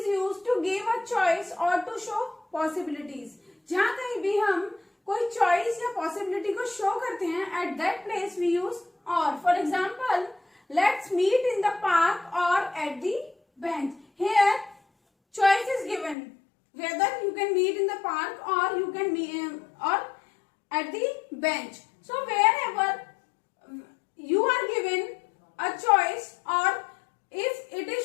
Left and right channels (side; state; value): right; drops out; at 16.2 s